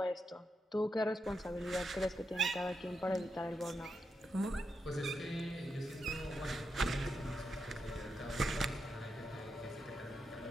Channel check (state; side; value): normal; both; correlation 0.85